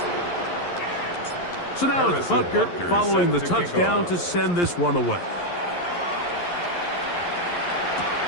So now it's Butker following the touchdown to send this one away.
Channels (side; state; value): right; late; 11 ms